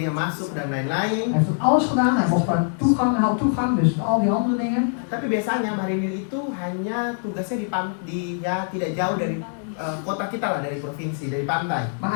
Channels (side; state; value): right; silent; 63 dB below the other